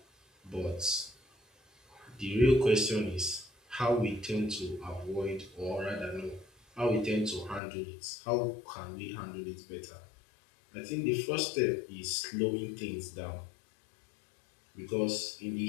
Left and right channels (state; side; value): drops out; right; at 7.6 s